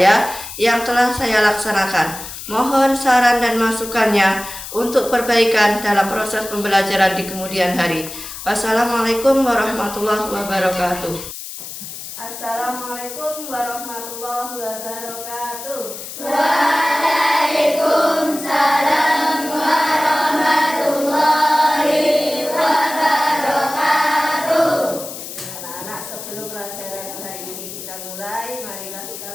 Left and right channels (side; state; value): left; noise; hiss, 10 dB below the sound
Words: yang telah saya laksanakan. Mohon saran dan masukannya untuk perbaikan dalam proses pembelajaran di kemudian hari. Wassalamualaikum warahmatullahi wabarakatuh. Assalamualaikum warahmatullahi wabarakatuh. Waalaikumsalam warahmatullahi wabarakatuh. Anak-anak, sebelum pelajaran hari ini kita mulai, marilah